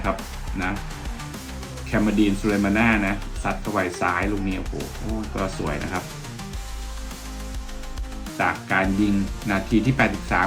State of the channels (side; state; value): both; identical; correlation 1.00